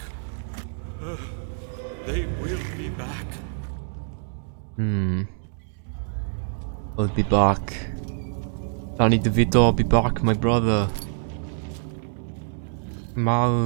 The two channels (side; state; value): left; silent; digital silence